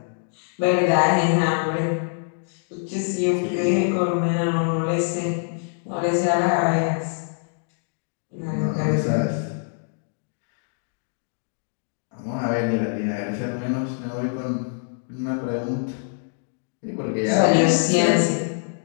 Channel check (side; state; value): right; silent; digital silence